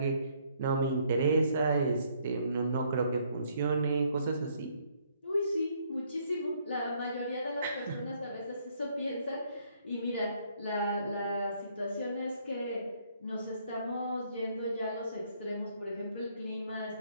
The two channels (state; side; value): inverted; both; correlation -0.67